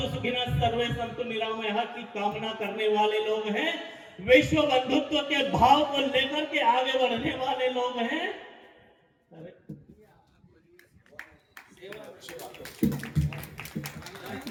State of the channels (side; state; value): both; identical; correlation 1.00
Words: सुखिनः सर्वे सन्तु निरामयः की कामना करने वाले लोग हैं, विश्व बंधुत्व के भाव को लेकर के आगे बढ़ने वाले लोग हैं।